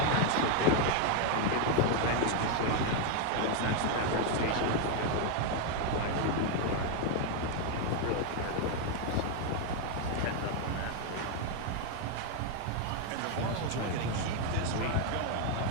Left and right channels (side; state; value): both; different; correlation 0.01